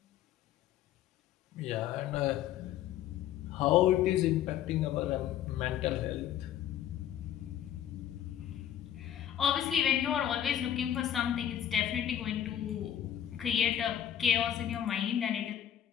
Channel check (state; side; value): quieter; right; 10.6 dB